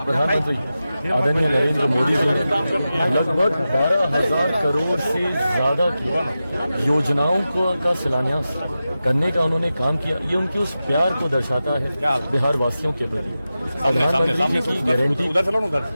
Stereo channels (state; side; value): inverted; both; correlation -0.93